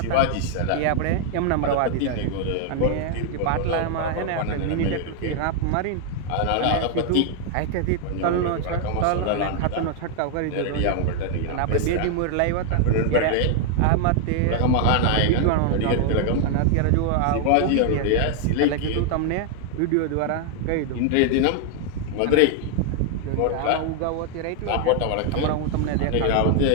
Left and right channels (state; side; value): different; both; correlation 0.00